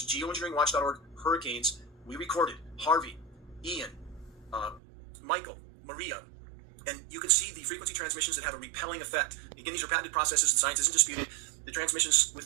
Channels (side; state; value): left; drops out; at 4.8 s